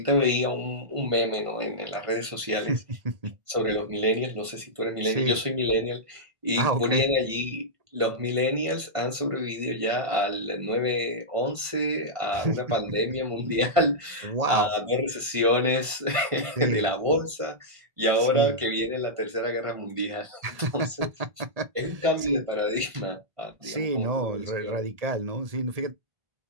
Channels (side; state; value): left; late; 1.5 ms